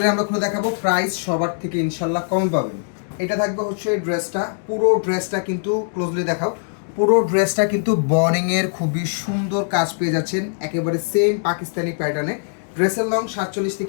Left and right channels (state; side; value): silent; right; 65 dB below the other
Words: আমরা খুলে দেখাবো, প্রাইস সবার থেকে ইনশাল্লাহ কম পাবেন। এটা থাকবে হচ্ছে ড্রেসটা, পুরো ড্রেসটা কিন্তু ক্লোজলি দেখাও। পুরো ড্রেসটা কিন্তু বর্ডিংয়ের খুবই সুন্দর কাজ পেয়ে যাচ্ছেন, একেবারে সেম পাকিস্তানি প্যাটার্নে। ড্রেসের লং 47